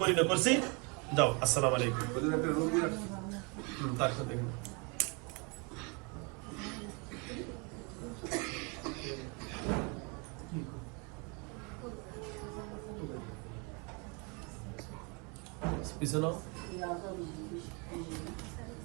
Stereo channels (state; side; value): quieter; left; 31.8 dB